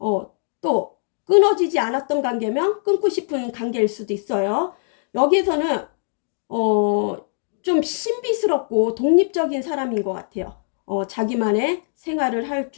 또 끊어지지 않았던 관계면 끊고 싶은 관계일 수도 있어요. 여기에서는 좀 신비스럽고 독립적인 사람인 것 같아요. 자기만의 생활을 할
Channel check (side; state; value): right; silent; digital silence